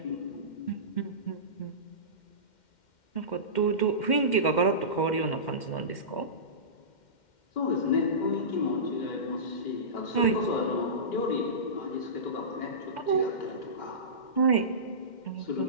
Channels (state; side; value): late; right; 2.1 ms